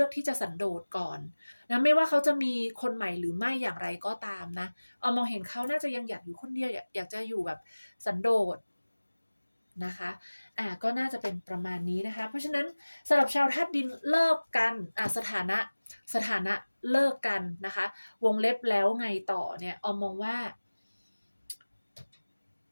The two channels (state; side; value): inverted; both; correlation -1.00